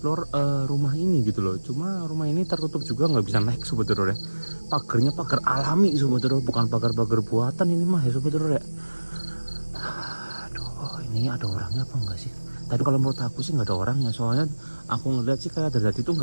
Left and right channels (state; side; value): inverted; both; correlation -1.00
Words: rumah ini gitu loh. Cuma rumah ini tertutup juga, nggak bisa naik Sobat Horor ya. Pagarnya pagar alami Sobat Horor, bukan pagar-pagar buatan ini mah ya Sobat Horor ya. Aduh, ini ada orangnya apa enggak sih? Tapi kalau menurut aku sih nggak ada orangnya, soalnya aku ngeliat sih kayak dari tadi itu